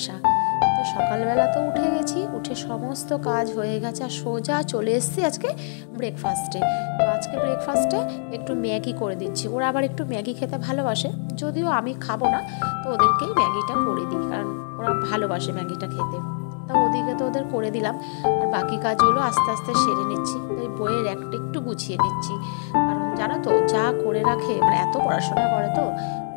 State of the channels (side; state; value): right; silent; digital silence